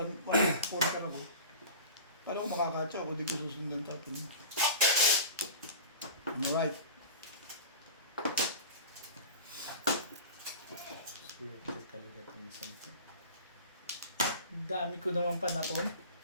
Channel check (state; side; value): inverted; both; correlation -0.36